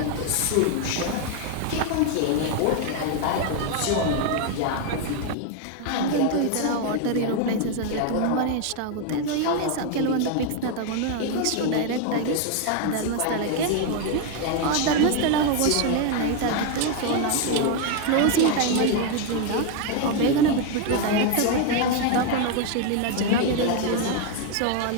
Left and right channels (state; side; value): different; both; correlation 0.01